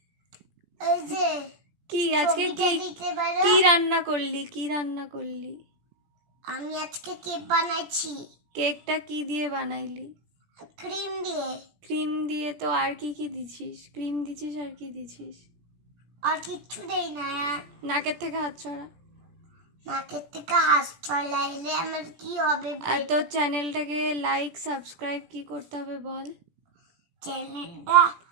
এই যে কি আজকে কি রান্না করলি? আমি আজকে কেক বানাইছি। কেকটা কি দিয়ে বানাইলি? ক্রিম দিয়ে তো আর কি দিছিস? ক্রিম দিছিস আর কি দিছিস? আর কিচ্ছু দেই না। নাকের থেকে হাত ছড়া। নাকের থেকে হাত ছড়াইলে আমার কি হবে? আর তোর চ্যানেলটাকে লাইক সাবস্ক্রাইব কি করতে হবে বল?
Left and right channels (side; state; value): left; late; 17 ms